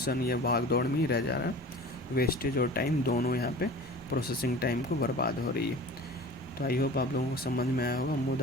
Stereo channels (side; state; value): both; normal; correlation 0.39